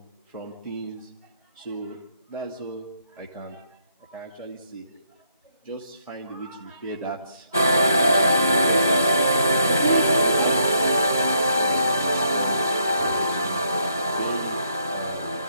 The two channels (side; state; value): both; inverted; correlation -0.73